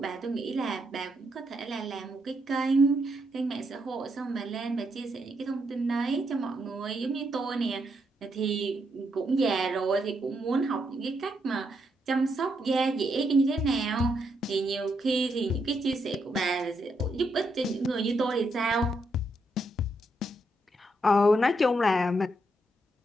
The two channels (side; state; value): both; normal; correlation 0.79